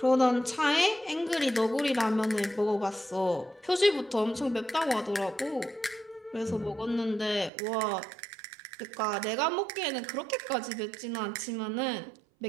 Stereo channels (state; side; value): drops out; left; at 7.5 s